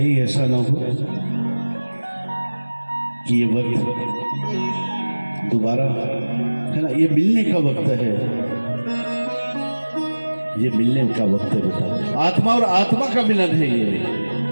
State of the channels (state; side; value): inverted; both; correlation -1.00